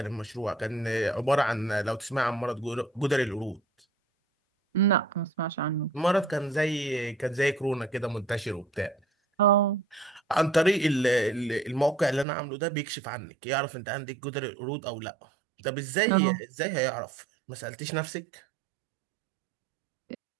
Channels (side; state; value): left; drops out; at 12.2 s